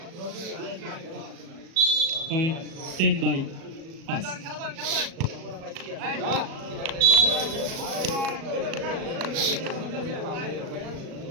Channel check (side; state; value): left; late; 37 ms